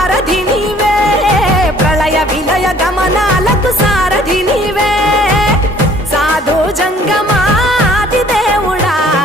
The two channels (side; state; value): both; normal; correlation 0.56